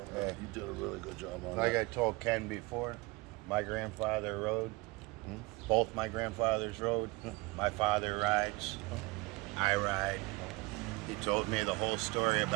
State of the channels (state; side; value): quieter; left; 24.2 dB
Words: Yeah. You did a really good job on Like that. I told Ken before, my grandfather rode. Both my grandfathers rode. My father rides. I ride. He told me the whole story